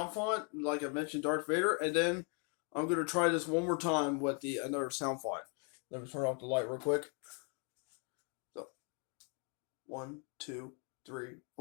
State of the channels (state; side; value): quieter; right; 38.3 dB